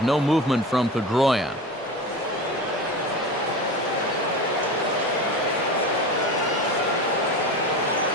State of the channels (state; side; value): normal; both; correlation 0.30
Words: no movement from Pedroia.